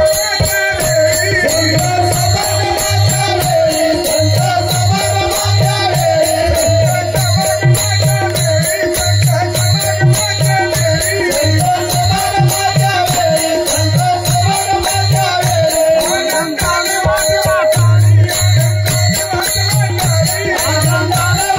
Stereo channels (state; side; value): identical; both; correlation 1.00